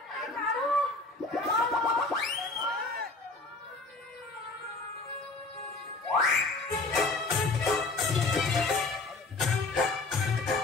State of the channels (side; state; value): right; quieter; 3.5 dB